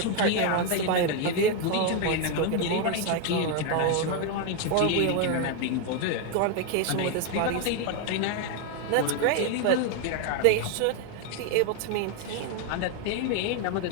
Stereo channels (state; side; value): different; both; correlation 0.01